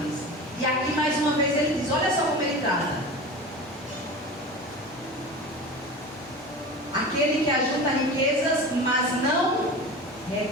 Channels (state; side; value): normal; both; correlation 0.32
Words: E aqui mais uma vez ele diz, olha só como ele trata. Aquele que ajunta riquezas, mas não